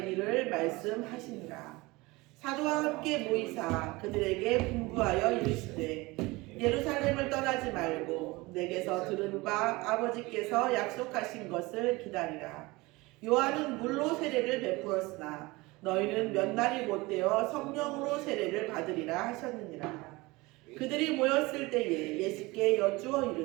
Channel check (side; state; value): left; quieter; 22.4 dB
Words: 일을 말씀하시니라. 사도와 함께 모이사 그들에게 분부하여 이르시되 예루살렘을 떠나지 말고 내게서 들은 바 아버지께서 약속하신 것을 기다리라. 요한은 물로 세례를 베풀었으나 너희는 몇 날이 못되어 성령으로 세례를 받으리라 하셨느니라. 그들이 모였을 때에 예수께 여쭈어